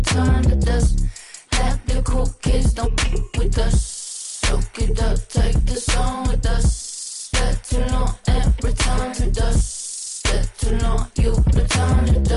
to dust. Let the cool kids don't f with us. Soak it up, take the song with us. Step too long and return to dust. Step too long, you return to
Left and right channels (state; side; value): identical; both; correlation 1.00